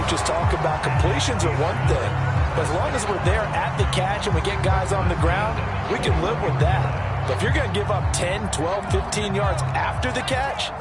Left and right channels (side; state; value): both; identical; correlation 1.00